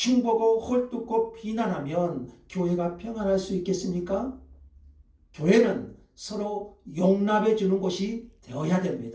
헐뜯고 비난하면 교회가 평안할 수 있겠습니까? 교회는 서로 용납해 주는 곳이 되어야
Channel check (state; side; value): identical; both; correlation 1.00